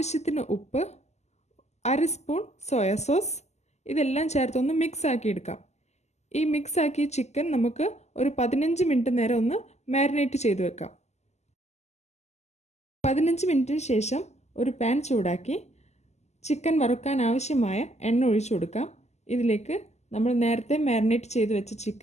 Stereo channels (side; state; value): right; late; 0.33 ms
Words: ഉപ്പ്, 1/2 സ്പൂൺ സോയ സോസ്. ഇതെല്ലാം ചേർത്തൊന്ന് മിക്സ് ആക്കി എടുക്കാം. ഈ മിക്സ് ആക്കിയ ചിക്കൻ നമുക്ക് ഒരു 15 മിനിറ്റ് നേരം ഒന്ന് മാരിനേറ്റ് ചെയ്ത് വെക്കാം. 15 മിനിറ്റിന് ശേഷം ഒരു പാൻ ചൂടാക്കി ചിക്കൻ വറുക്കാൻ ആവശ്യമായ എണ്ണ ഒഴിച്ചു കൊടുക്കാം. ഇതിലേക്ക് നമ്മൾ നേരത്തെ മാരിനേറ്റ് ചെയ്ത് വെച്ച